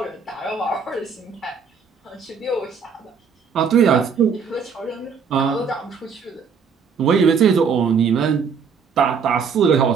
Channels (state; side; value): quieter; left; 6.0 dB